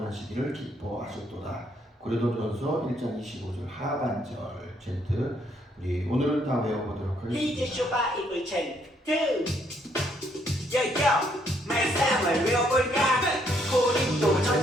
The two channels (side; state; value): both; normal; correlation 0.70